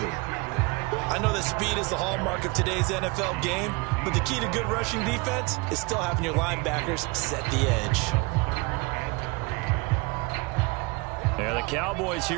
I know that speed is the hallmark of today's NFL game, but the key to good rushing defense is still having your linebackers set the edge. And the Cowboys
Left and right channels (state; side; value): quieter; left; 25.6 dB